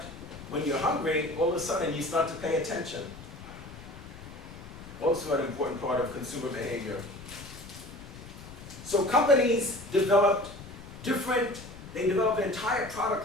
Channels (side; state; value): left; noise; rumble, 17 dB below the sound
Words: when you're hungry, all of a sudden you start to pay attention. Also an important part of consumer behavior. So companies developed an entire